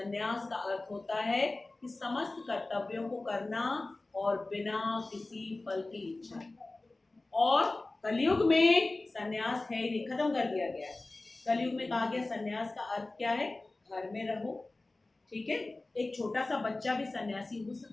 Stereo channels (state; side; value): quieter; right; 3.1 dB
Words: का अर्थ होता है कि समस्त कर्तव्यों को करना और बिना किसी फल की इच्छा। और कलयुग में संन्यास है ही नहीं, खत्म कर दिया गया है। कलयुग में कहा गया संन्यास का अर्थ क्या है? घर में रहो, ठीक है। एक छोटा सा बच्चा भी सन्यासी हो